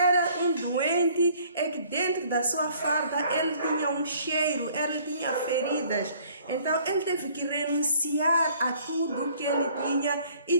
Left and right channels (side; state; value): both; inverted; correlation -0.57